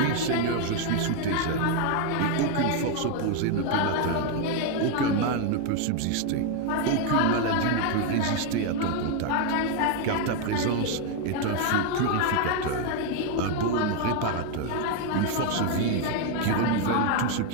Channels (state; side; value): different; both; correlation 0.01